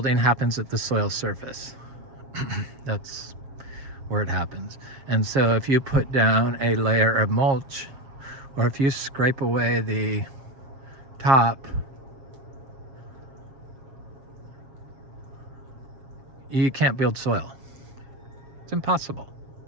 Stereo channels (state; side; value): late; left; 7.4 ms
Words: happens at the soil surface. That's where it happens. And so if you put down a layer of mulch, or if you scrape away the top, you can't build soil. It's impossible.